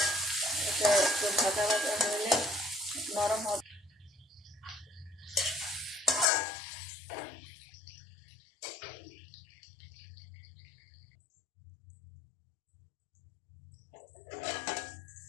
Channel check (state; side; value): drops out; right; at 6.2 s